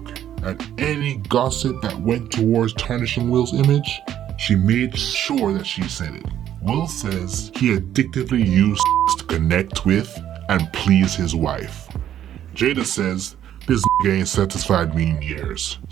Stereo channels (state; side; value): quieter; left; 11.0 dB